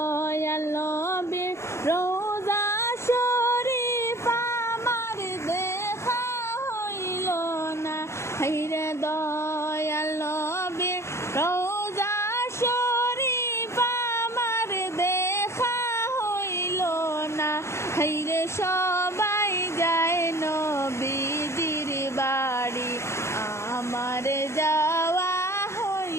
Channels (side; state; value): right; late; 0.13 ms